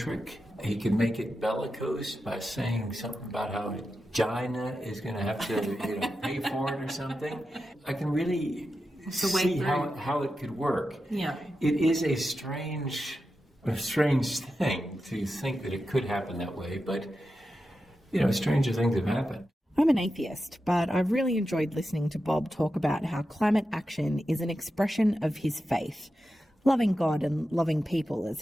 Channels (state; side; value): normal; both; correlation 0.90